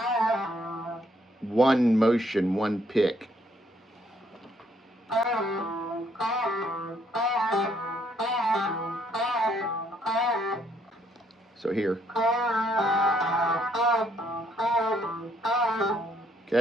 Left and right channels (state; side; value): normal; both; correlation 0.69